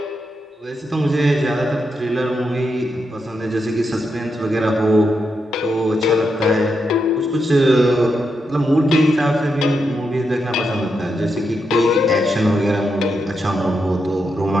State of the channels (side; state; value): both; normal; correlation 0.84